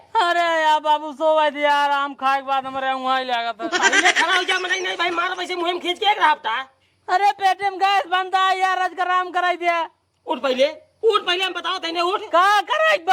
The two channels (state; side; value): identical; both; correlation 1.00